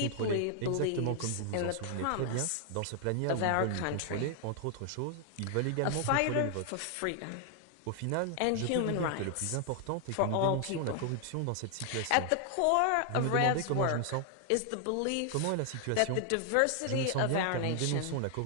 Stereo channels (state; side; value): different; both; correlation 0.00